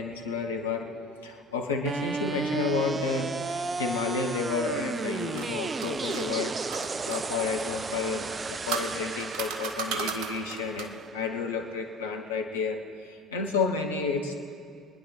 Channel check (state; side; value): normal; both; correlation 0.38